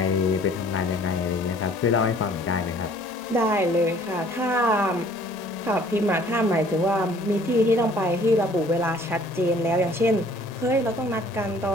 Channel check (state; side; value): normal; both; correlation 0.55